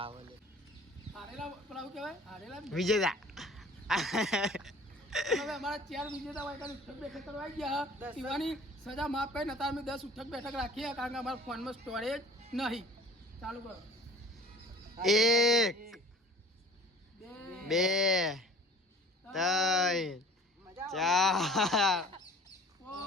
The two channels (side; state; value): both; normal; correlation 0.47